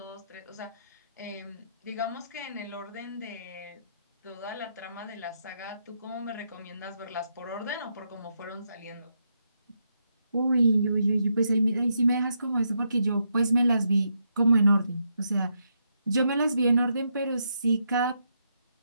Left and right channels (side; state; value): both; inverted; correlation -0.80